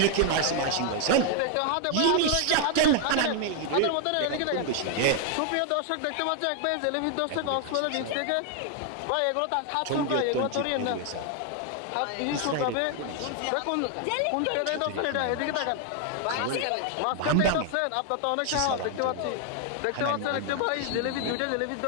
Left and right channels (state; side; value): different; both; correlation 0.00